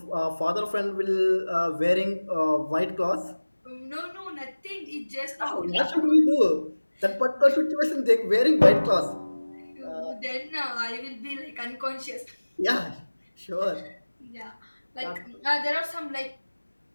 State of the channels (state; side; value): inverted; both; correlation -1.00